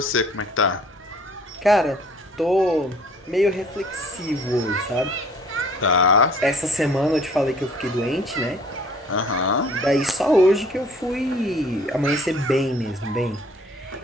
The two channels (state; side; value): normal; both; correlation 0.55